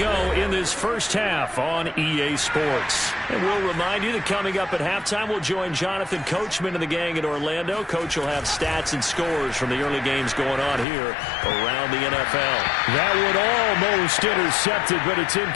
in this first half on EA Sports. And we'll remind you that coming up at halftime, we'll join Jonathan Coachman and the gang in Orlando. Coach will have stats and scores from the early games going on here around the NFL. That would almost intercepted, but it's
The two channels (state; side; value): drops out; right; at 10.9 s